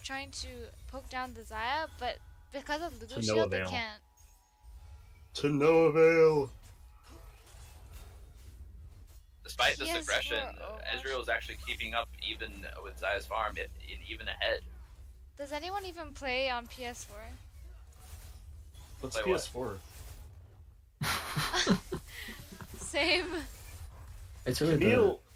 trying to poke down the Zaya, but because of To Lulu no shield, they avail. can't. To no avail. Despite this PS4 aggression, Overwatch. Ezreal is actually keeping up even with Zaya's farm, even ahead. Does anyone even play on PS4? What's Play what? PS4? Same. It's really Camille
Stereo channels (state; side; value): identical; both; correlation 1.00